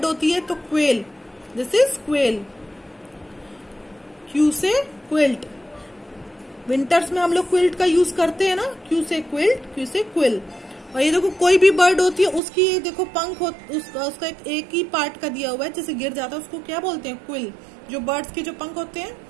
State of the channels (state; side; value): drops out; left; at 12.4 s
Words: होती है तो quail. This is quail. Q से क्विल्ट। विंटर्स में हम लोग क्विल्ट का यूज करते हैं ना, क्यू से क्विल्ट, क्यू से क्विल। और ये देखो कोई भी बर्ड होती है उसकी ये देखो पंख उसका एक ही पार्ट का दिया हुआ है, जैसे गिर जाता है उसको क्या बोलते हैं? क्विल। जो बर्ड्स के जो पंख होते